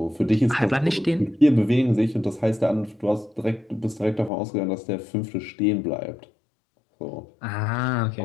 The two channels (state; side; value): drops out; right; at 4.3 s